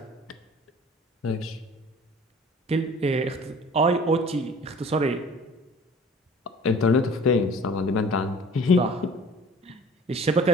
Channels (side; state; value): both; normal; correlation 0.47